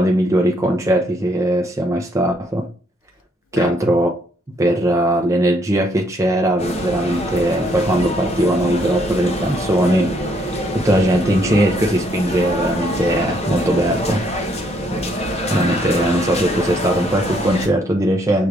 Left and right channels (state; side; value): normal; both; correlation 0.70